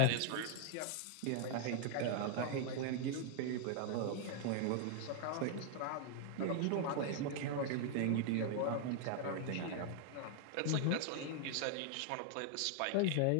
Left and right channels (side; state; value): both; different; correlation 0.00